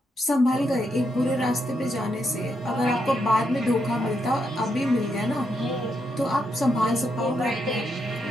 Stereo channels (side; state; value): both; normal; correlation 0.80